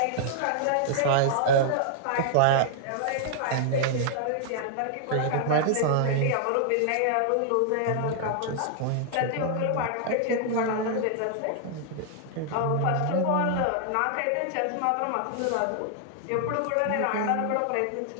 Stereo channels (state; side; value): different; both; correlation -0.01